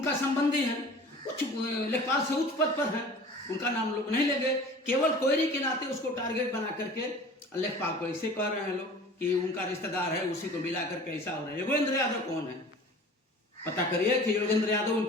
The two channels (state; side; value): normal; both; correlation 0.43